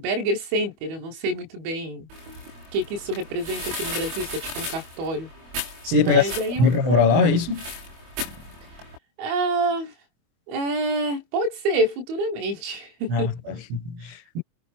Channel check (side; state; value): left; late; 24 ms